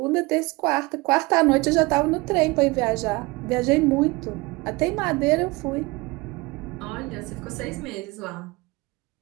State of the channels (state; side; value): quieter; left; 23.9 dB